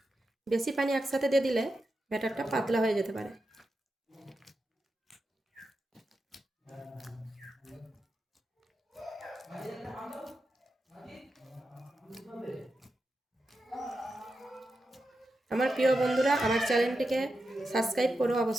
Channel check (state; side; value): normal; both; correlation 0.89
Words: বেশি পানি একসাথে দিয়ে দিলে ব্যাটারটা পাতলা হয়ে যেতে পারে। আমার প্রিয় বন্ধুরা, আমার চ্যানেলটিকে সাবস্ক্রাইব করো